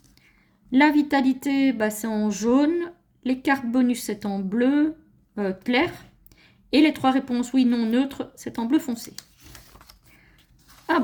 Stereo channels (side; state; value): both; identical; correlation 1.00